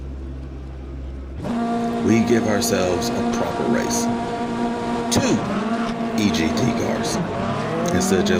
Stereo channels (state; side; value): identical; both; correlation 1.00